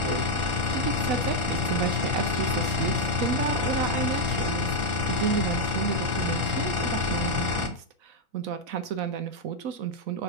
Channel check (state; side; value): late; left; 4.0 ms